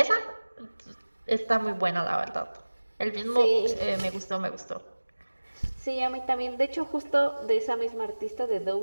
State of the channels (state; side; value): inverted; both; correlation -1.00